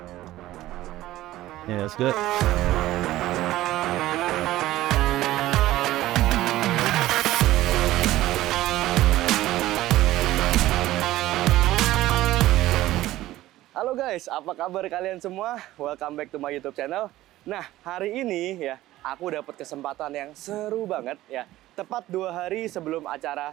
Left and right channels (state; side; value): quieter; left; 15.7 dB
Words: Yeah, that's good. Halo guys, apa kabar kalian semua? Welcome back to my YouTube channel. Nah, hari ini ya, aku dapat kesempatan yang seru banget ya. Tepat 2 hari sebelum acara